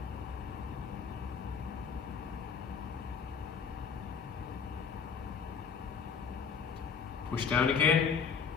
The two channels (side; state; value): right; quieter; 6.3 dB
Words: Push down again.